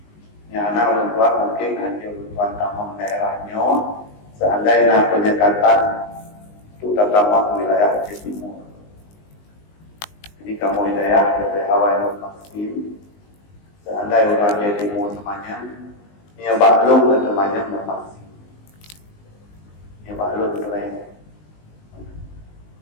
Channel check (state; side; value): late; right; 19 ms